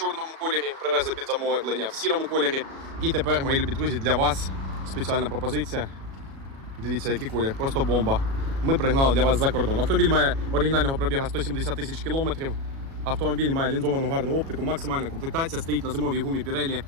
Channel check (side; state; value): left; late; 37 ms